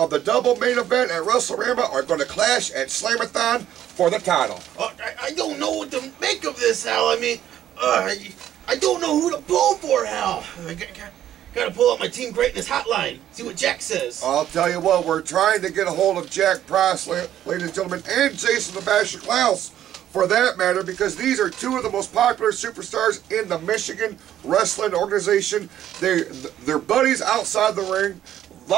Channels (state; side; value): quieter; left; 11.5 dB